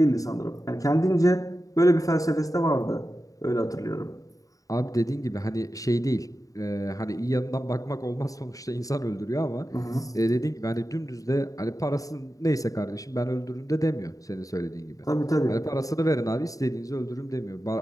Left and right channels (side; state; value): right; late; 0.16 ms